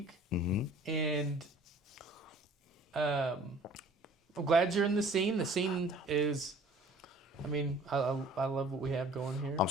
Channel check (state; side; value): normal; both; correlation 0.51